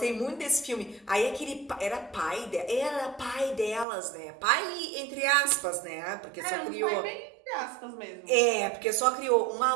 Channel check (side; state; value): left; drops out; at 3.9 s